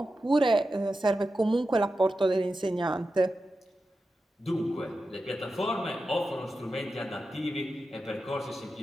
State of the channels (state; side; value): normal; both; correlation 0.91